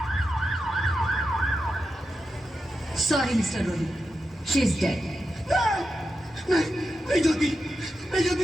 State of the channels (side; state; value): both; normal; correlation 0.89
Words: Sorry, Mr. Rohit. She's dead. नहीं, नहीं ज्योति, नहीं ज्योति,